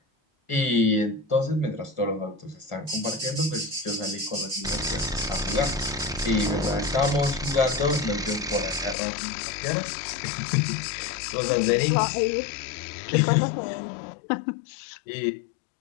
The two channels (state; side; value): drops out; right; at 9.0 s